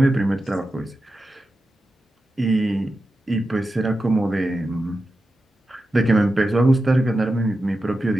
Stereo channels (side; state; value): both; normal; correlation 0.91